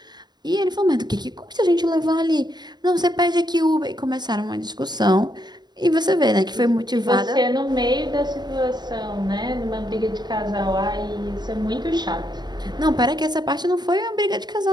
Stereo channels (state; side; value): late; left; 0.20 ms